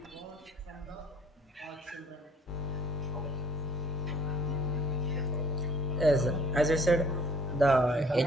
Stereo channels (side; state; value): both; normal; correlation 0.57